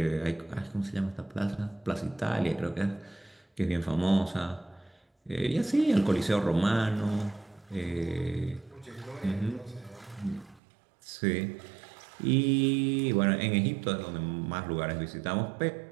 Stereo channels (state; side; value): drops out; left; at 10.6 s